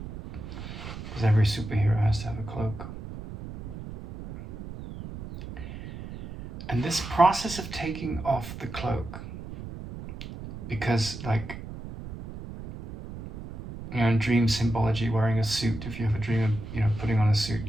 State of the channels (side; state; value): right; noise; rumble, 11 dB below the sound